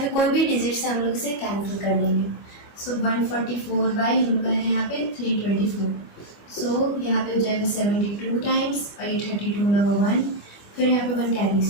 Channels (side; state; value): right; late; 25 ms